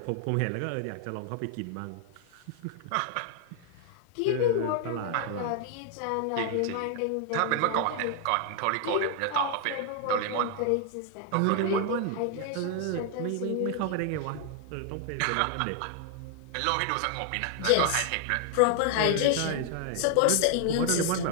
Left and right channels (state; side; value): different; both; correlation 0.00